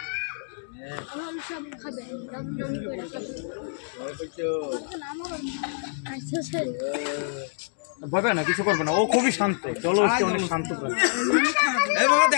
সব খাবে ভয় পায় না, কিছু করবে না, ও খুবই শান্ত, জলহস্তি অনেক শান্ত প্রাণী।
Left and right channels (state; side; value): silent; right; digital silence